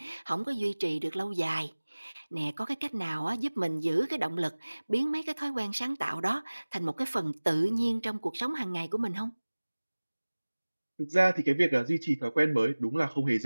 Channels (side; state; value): both; inverted; correlation -1.00